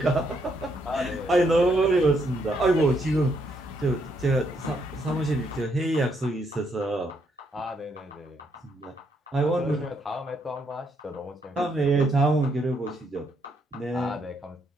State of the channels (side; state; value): both; normal; correlation 0.74